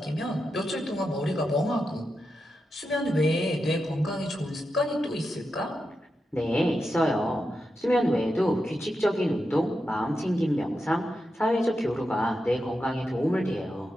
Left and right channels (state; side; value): normal; both; correlation 0.88